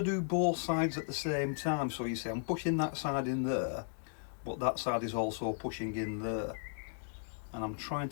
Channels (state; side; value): silent; right; digital silence